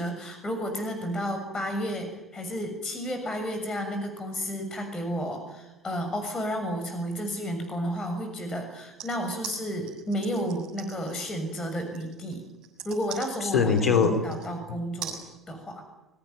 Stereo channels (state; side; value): normal; both; correlation 0.44